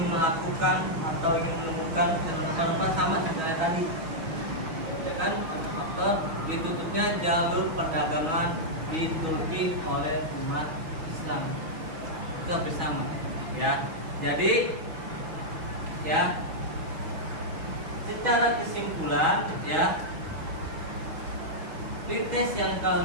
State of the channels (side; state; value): left; late; 6.2 ms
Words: melakukan atau ingin menemukan rempah-rempah sama seperti tadi, ya kan? Faktor ditutupnya jalur perdagangan di Turki oleh umat Islam, itu hampir sama, ya. Jadi, ya, secara kesimpulan, ya, pretest yang